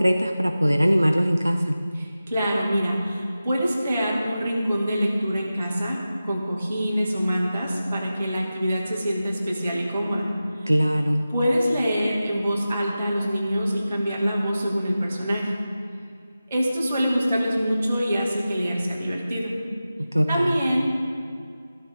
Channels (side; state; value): both; inverted; correlation -0.94